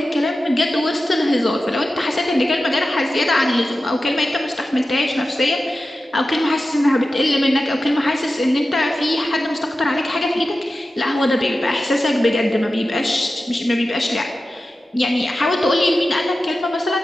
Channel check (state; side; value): normal; both; correlation 0.93